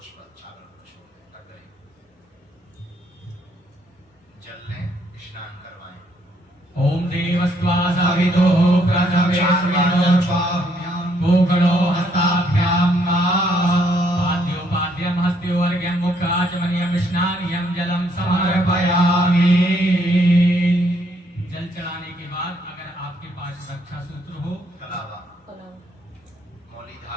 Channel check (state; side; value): normal; both; correlation 0.70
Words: चावल छोड़ दें। जल लें, स्नान करवाएं। ओम देवस्त्वा सवितो प्रथमेस्मिनो भूगलो हस्ताभ्यां पाद्योपाद्यं हस्त्योर्घ्यं मुखाचमनीयं स्नानियं जलं समर्पयामि। जल चढ़ाने के बाद अगर आपके पास रक्षा सूत्र हो, कलावा मौली